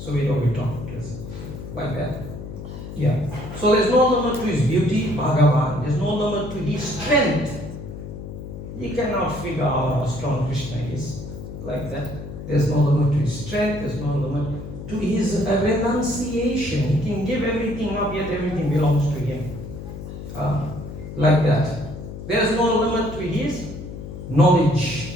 we know we talk like that. Yeah. So there's no limit to his beauty, Bhagavan. There's no limit to his strength. You cannot figure out how strong Krishna is like that. There's no limit to his strength, there's no limit to his renunciation. He can give everything up, yet everything belongs to him. Like that. There's no limit to his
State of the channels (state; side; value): noise; left; hum, 10 dB below the sound